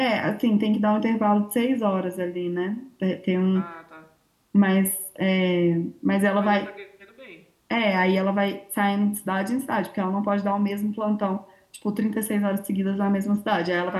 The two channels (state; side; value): identical; both; correlation 1.00